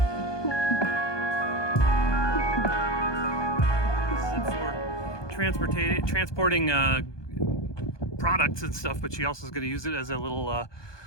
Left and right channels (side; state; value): right; late; 1.2 ms